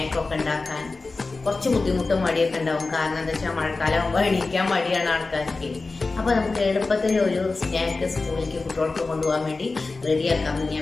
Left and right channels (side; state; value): right; quieter; 3.7 dB